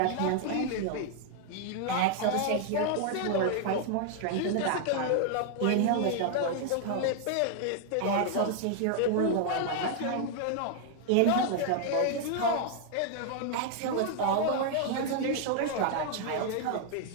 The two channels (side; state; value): both; different; correlation 0.00